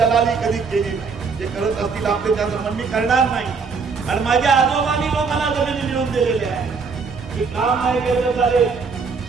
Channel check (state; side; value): quieter; left; 5.1 dB